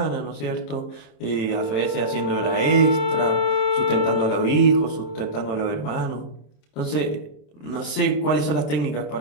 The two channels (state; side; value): late; right; 27 ms